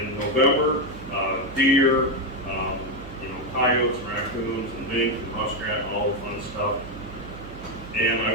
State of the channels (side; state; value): right; noise; hum, 15 dB below the sound